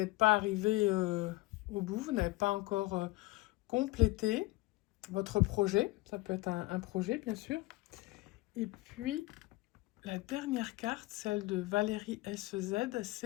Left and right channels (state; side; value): quieter; right; 20.6 dB